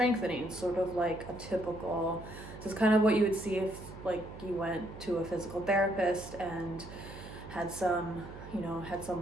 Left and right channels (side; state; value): right; noise; hum, 14 dB below the sound